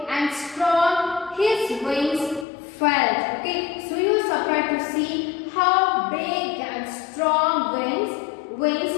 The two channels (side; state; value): right; drops out; at 2.5 s